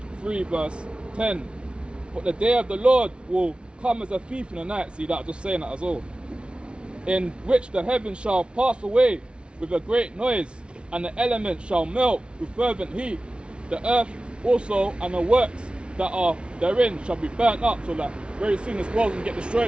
3 verse 10. But the day of the Lord will come as a thief in the night. See that? Just saying that as well. In which the heavens shall pass away with a great noise, and the elements shall melt with fervent heat. The earth also and the works that are therein shall be burnt up. So that very soon this world's gonna get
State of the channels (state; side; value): late; left; 0.057 ms